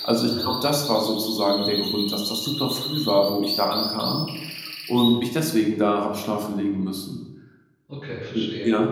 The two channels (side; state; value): both; identical; correlation 1.00